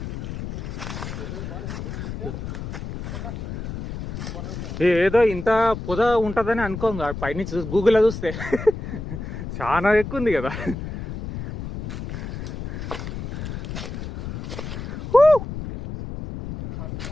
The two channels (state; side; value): noise; left; rumble, 7 dB below the sound